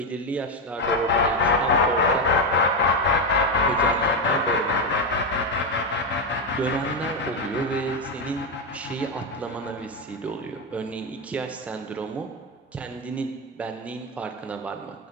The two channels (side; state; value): both; normal; correlation 0.08